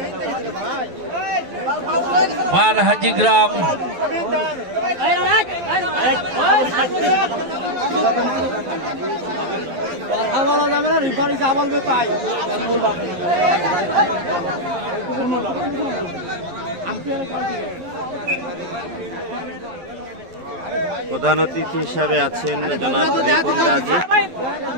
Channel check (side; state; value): left; late; 11 ms